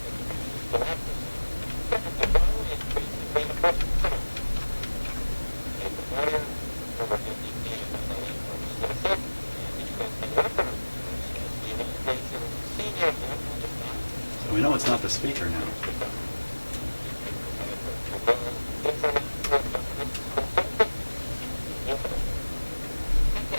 So we know it's not the speaker now.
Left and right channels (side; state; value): both; inverted; correlation -1.00